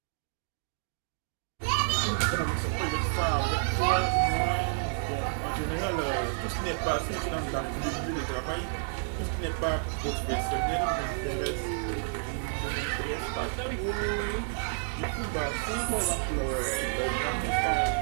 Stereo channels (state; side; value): silent; left; digital silence